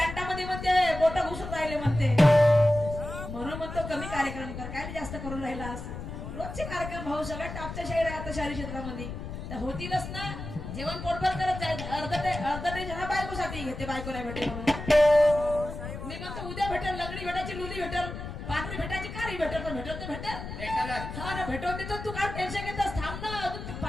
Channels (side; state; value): left; noise; rumble, 8 dB below the sound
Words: म्हणते बोट घुसून राहिले म्हणते म्हणून म्हणतो कमी कार्यक्रम कर काय जास्त करून राहिलास रोजचे कार्यक्रम भाऊ सगळ्यात टॉपच्या शाहीर आहे आता शहरी क्षेत्रामध्ये तर होतीलच ना जेवण पोटभर करत जाईल अर्ध ते जरा बायकोसाठी घेते बायको नाही भेटेल म्हणून मी म्हणतो उद्या भेटेल लंगडी भेटायची लुली भेटेल पांढरी भेटायची कारी भेटेल पण भेटत नाही भेटेल हा ना भेटवून देतो तू काय टेन्शन घेतोस थांब ना अजून